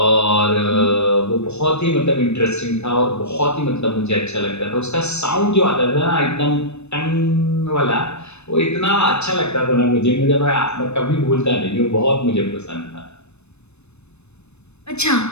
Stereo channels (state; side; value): late; right; 0.81 ms